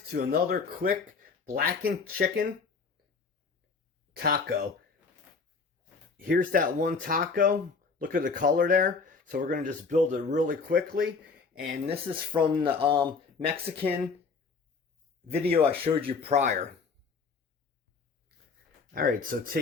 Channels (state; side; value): quieter; right; 4.9 dB